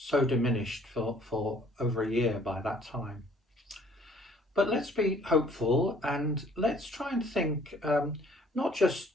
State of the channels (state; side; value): normal; both; correlation 0.58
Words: diminished for over a year by that time. But let's be hopeful, and let's try and think not just